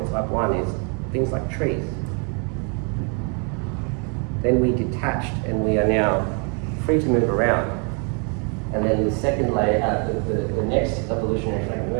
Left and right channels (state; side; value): quieter; left; 37.8 dB